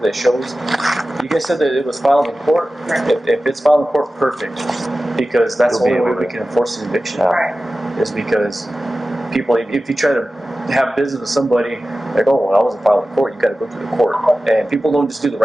that shows, you guys said that it was filed in court. If it's filed in court, perfect, because that's the only way we can enforce an eviction. Right. Is because people, if you try to have business with somebody, like, oh, well, I wasn't filed in court, you got to go through the court, and people don't just do the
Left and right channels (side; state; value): both; normal; correlation 0.95